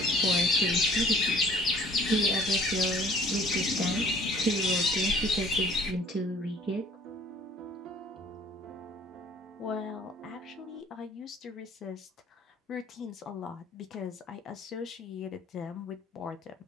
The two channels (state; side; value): normal; both; correlation 0.54